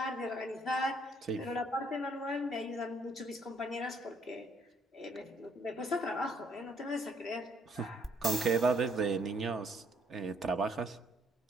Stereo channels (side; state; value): both; normal; correlation 0.67